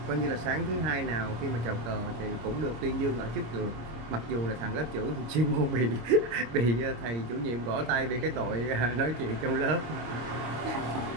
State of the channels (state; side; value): late; left; 26 ms